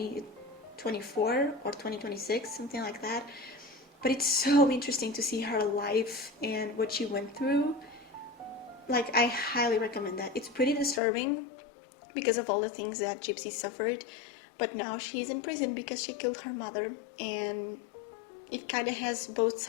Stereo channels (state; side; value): drops out; right; at 11.0 s